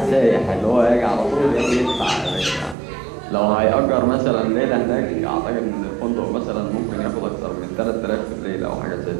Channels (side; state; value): left; drops out; at 2.8 s